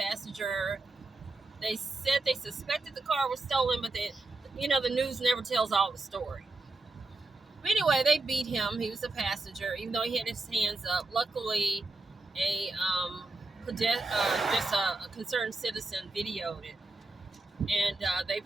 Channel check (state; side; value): quieter; left; 3.2 dB